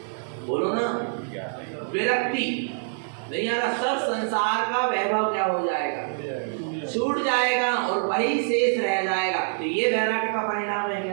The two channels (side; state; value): left; silent; digital silence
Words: बोलो ना, विरक्ति नहीं आ रहा। सब संसार का वैभव क्या हो जाएगा? छूट जाएगा और वही शेष रह जाएगा। तो ये वैराग्य का परिणाम है